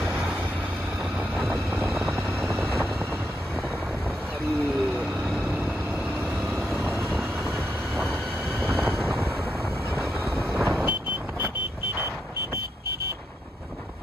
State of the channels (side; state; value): both; normal; correlation 0.82